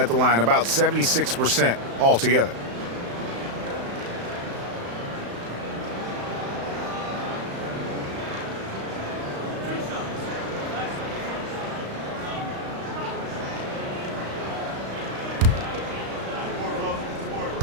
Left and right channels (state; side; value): late; left; 35 ms